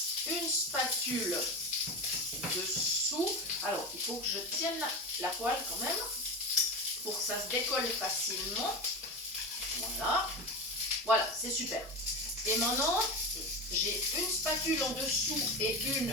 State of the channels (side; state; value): both; normal; correlation 0.23